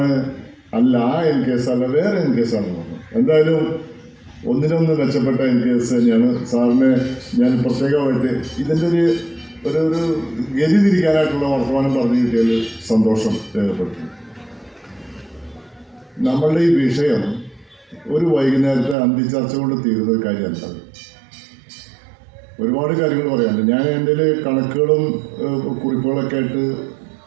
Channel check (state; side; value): drops out; left; at 18.9 s